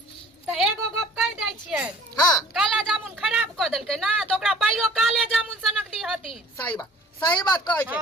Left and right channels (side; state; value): both; normal; correlation 0.50